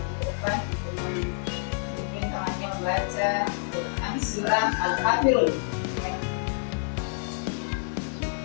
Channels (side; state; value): right; silent; digital silence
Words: depan mungkin temannya membaca Quran surah Al-Kafirun. Oke.